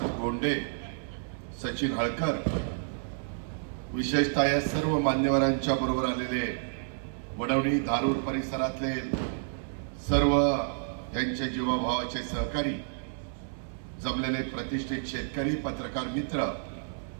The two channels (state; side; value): silent; left; 58 dB below the other